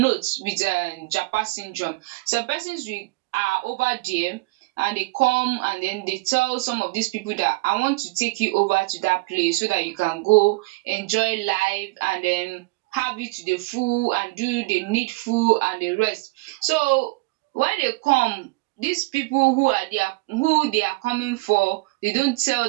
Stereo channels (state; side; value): quieter; left; 23.7 dB